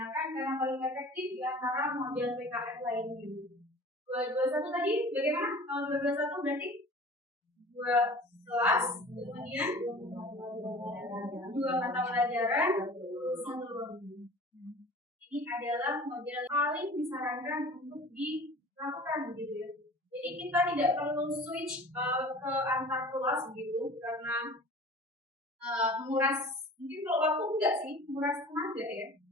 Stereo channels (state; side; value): normal; both; correlation 0.43